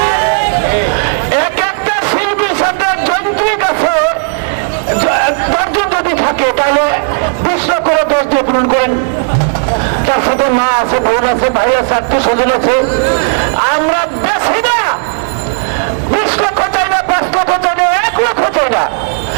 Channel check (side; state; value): left; silent; digital silence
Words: এক একটা শিল্পীর সাথে যন্ত্রিক আছে 10 জন যদি থাকে, তাহলে 20 লক্ষ 10 দিয়ে পূরণ করেন। তার সাথে মা আছে, বোন আছে, ভাই আছে, আত্মীয় স্বজন আছে। আমরা বেশি না, 20 লক্ষ চাই না, 5 লক্ষ চাই না, 1 লক্ষ চাই না,